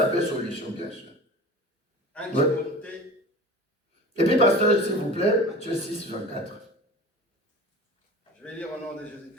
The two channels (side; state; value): both; normal; correlation 0.37